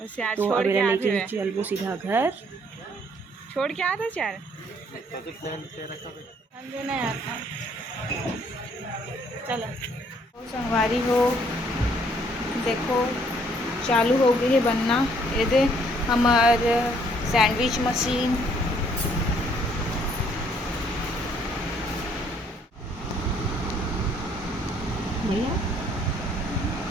तो अब लेके चलबो सीधा घर। छोड़ के आते चार देना यार। चलो तो संगवारी हो देखो चालू हो गई है बनना। ये दे हमार सैंडविच मशीन। भैया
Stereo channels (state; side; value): normal; both; correlation 0.64